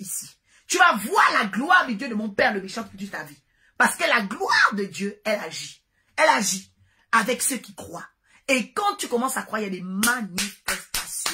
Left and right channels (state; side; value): identical; both; correlation 1.00